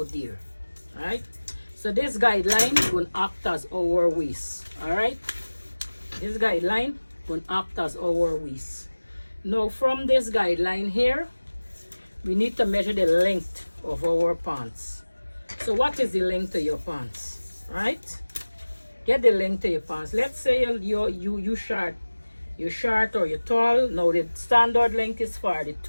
there. Alright? So this guideline is going to act as our waist. Alright? This guideline is going to act as our waist. Now from this guideline here, we need to measure the length of our pants. So what is the length of your pants, right? Get the length of your pants. Let's say you short or you're tall. Now the standard length is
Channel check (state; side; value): inverted; both; correlation -1.00